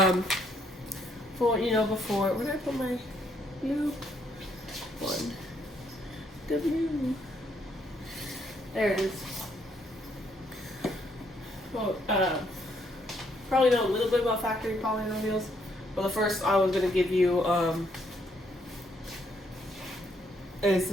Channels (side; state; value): both; normal; correlation 0.71